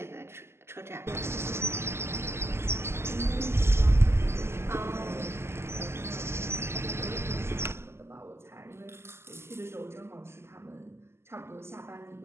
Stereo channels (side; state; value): left; late; 0.12 ms